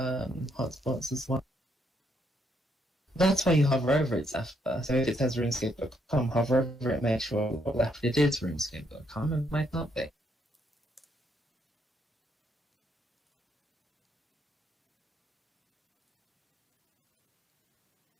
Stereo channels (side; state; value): both; normal; correlation 0.74